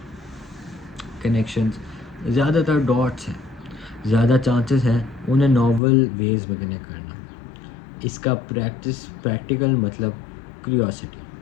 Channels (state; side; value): drops out; right; at 5.8 s